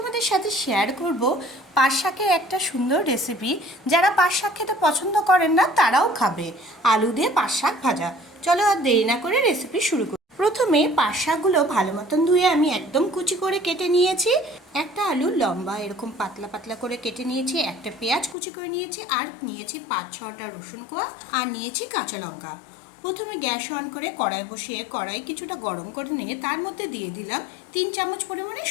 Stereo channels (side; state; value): right; drops out; at 18.4 s